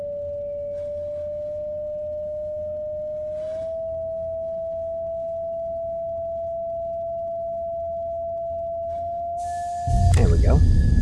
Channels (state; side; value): identical; both; correlation 1.00